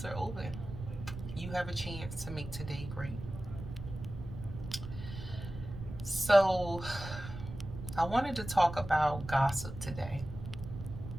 are open. You have a chance to make today great. So, I wanted to talk about gossip today.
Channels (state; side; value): noise; right; rumble, 10 dB below the sound